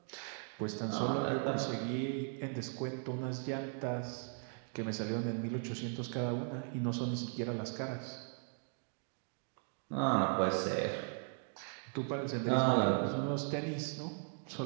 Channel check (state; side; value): silent; left; 52 dB below the other